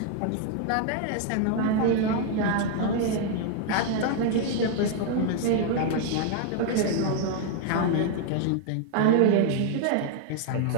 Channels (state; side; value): different; both; correlation 0.00